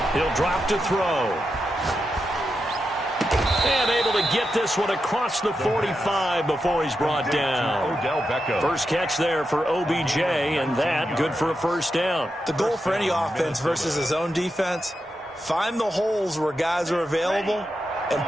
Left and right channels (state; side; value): normal; both; correlation 0.87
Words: He'll drop to throw. And able to get this one across the 45 before he's brought down. First catch there for OBJ, and that good for a first down. The goal for any offense versus his own defense, find the holes where guys are available and